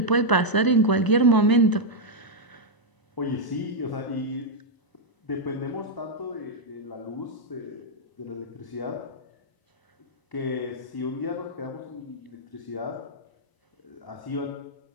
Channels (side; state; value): right; late; 1.0 ms